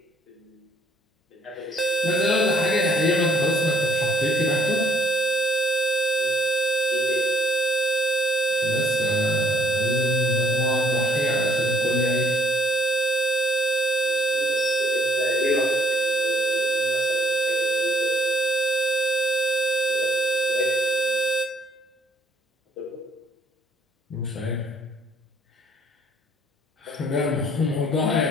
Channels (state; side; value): normal; both; correlation 0.66